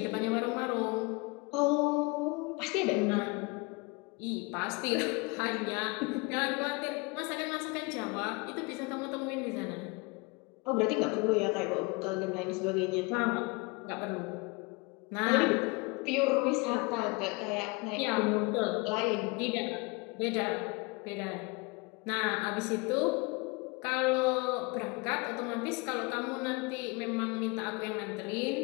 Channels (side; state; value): right; quieter; 27.4 dB